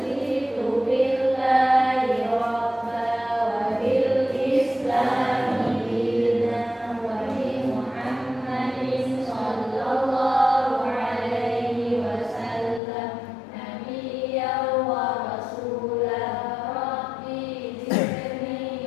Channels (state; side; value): drops out; right; at 12.8 s